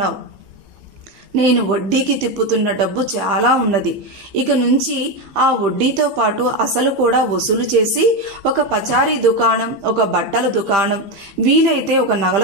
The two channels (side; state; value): left; late; 15 ms